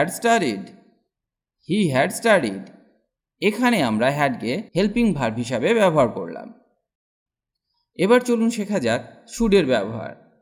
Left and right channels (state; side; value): identical; both; correlation 1.00